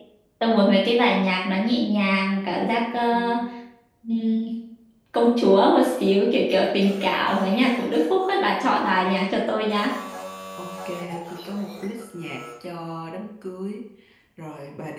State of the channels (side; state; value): both; identical; correlation 1.00